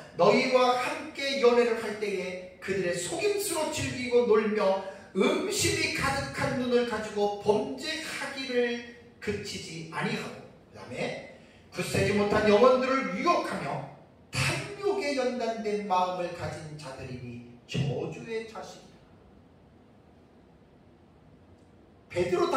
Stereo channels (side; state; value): both; identical; correlation 1.00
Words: 너희와 함께 연애를 할 때에 그들의 속임수로 즐기고 놀며 음심이 가득한 눈을 가지고 범죄하기를 그치지 아니하고, 그 다음에 굳세지 못한 영혼들을 유혹하며 탐욕에 연단된 마음을 가진 자들이니 저주의 자식이다. 베드로